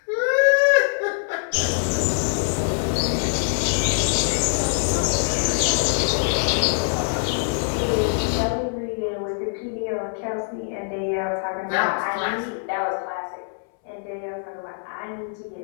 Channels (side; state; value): right; silent; 63 dB below the other